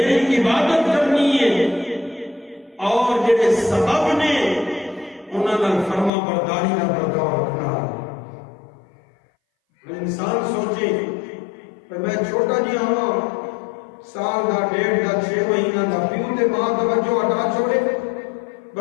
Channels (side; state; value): right; drops out; at 6.1 s